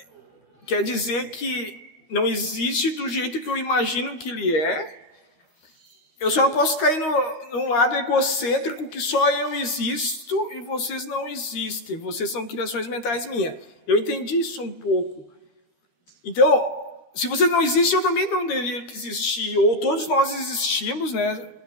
quer dizer que não existe do jeito que eu imagino que ele é. Eu só não posso cair num lado egocêntrico que só eu existo e vocês não existem. Vocês são criações mentais minhas. Eu entendi isso um pouco. Então, se vocês não existem, eu também não deveria existir. Ou todos nós existimos, né?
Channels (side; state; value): right; late; 13 ms